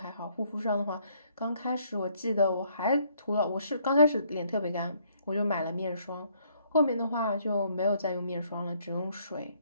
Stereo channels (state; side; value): inverted; both; correlation -0.67